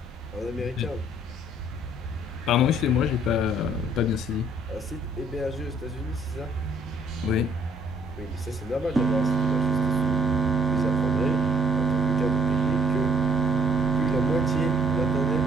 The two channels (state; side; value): normal; both; correlation 0.62